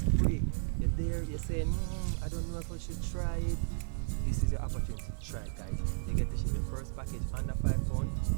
You're there, you're saying, I don't know if I should try it. This is your opportunity to try it, guys. You get to ship your first package under £5,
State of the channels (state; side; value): silent; left; 55 dB below the other